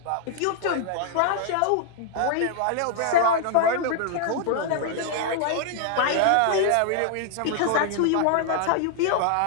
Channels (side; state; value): both; different; correlation -0.01